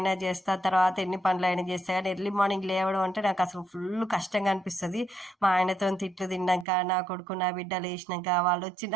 చేస్తా, తర్వాత ఎన్ని పనులైనా చేస్తా, కానీ ఎర్లీ మార్నింగ్ లేవడం అంటే నాకు అసలు ఫుల్ కష్టంగా అనిపిస్తుంది. మా ఆయనతో తిట్లు తిన్నాక, నా కొడుకు నా బిడ్డ లేచినాక, వాళ్ళు వచ్చి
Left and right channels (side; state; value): left; drops out; at 6.7 s